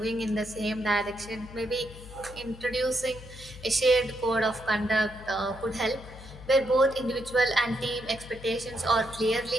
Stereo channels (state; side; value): noise; left; hum, 16 dB below the sound